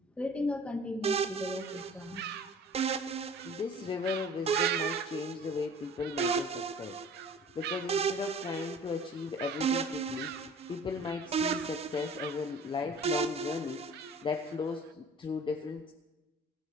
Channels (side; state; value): both; normal; correlation 0.46